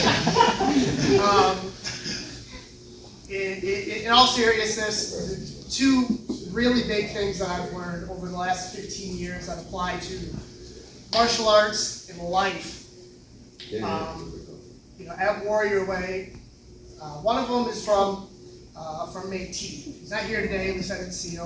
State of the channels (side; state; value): both; identical; correlation 1.00